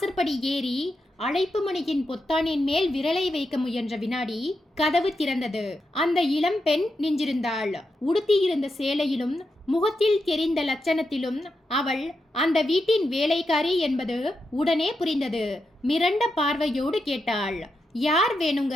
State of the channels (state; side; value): normal; both; correlation 0.86